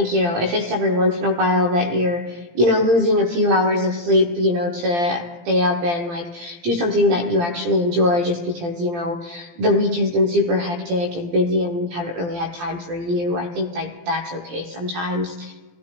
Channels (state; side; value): late; left; 17 ms